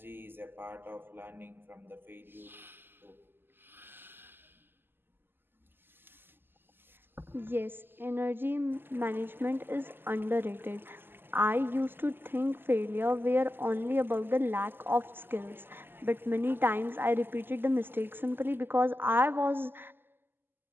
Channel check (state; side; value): late; left; 0.098 ms